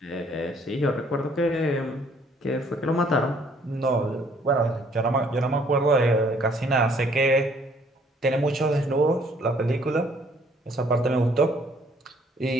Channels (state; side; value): normal; both; correlation 0.62